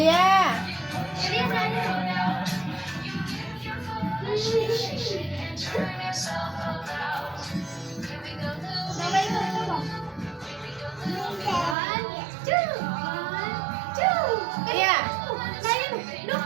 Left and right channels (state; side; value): drops out; left; at 11.8 s